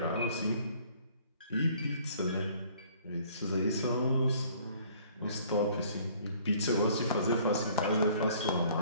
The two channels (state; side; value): inverted; both; correlation -0.56